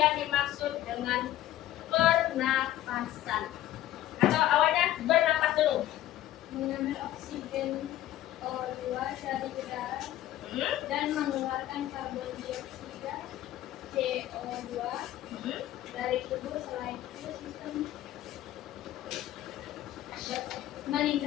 dimaksud dengan pernapasan? Atau awalnya bernapas dulu? Mengambil oksigen O2 dari udara dan mengeluarkan karbon dioksida CO2 dari tubuh. Selain itu sistem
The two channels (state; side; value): quieter; right; 13.7 dB